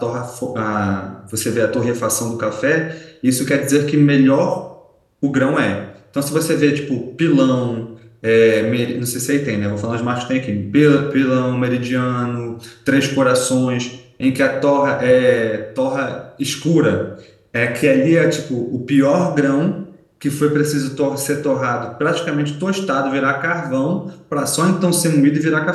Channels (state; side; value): identical; both; correlation 1.00